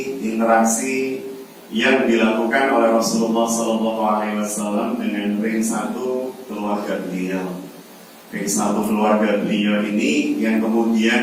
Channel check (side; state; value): both; identical; correlation 1.00